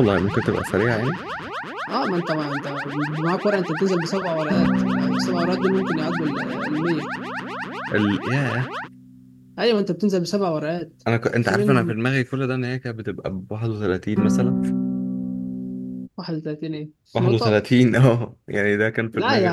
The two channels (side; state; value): both; identical; correlation 1.00